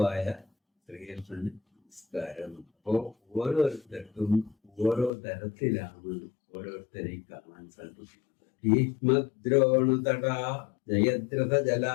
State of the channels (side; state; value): right; drops out; at 5.1 s